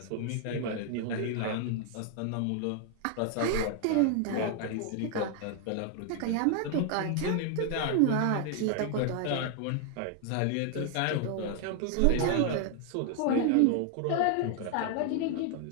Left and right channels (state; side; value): different; both; correlation 0.00